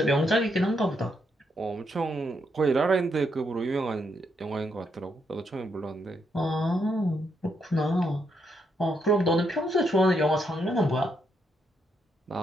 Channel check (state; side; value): normal; both; correlation 0.78